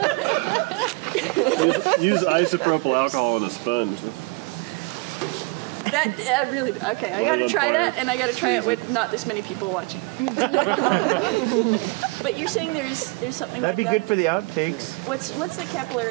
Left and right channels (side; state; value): left; quieter; 27.4 dB